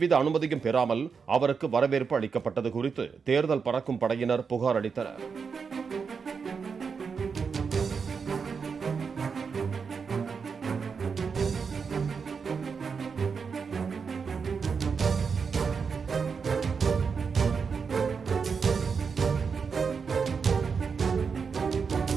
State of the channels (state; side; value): quieter; left; 5.7 dB